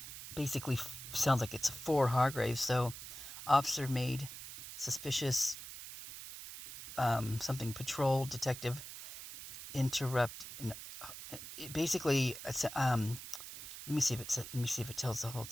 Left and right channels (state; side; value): noise; right; hiss, 11 dB below the sound